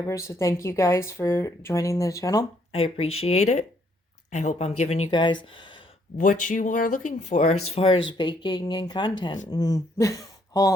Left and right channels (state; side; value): normal; both; correlation 0.69